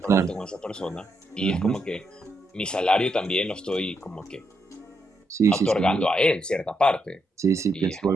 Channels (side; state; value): both; normal; correlation 0.80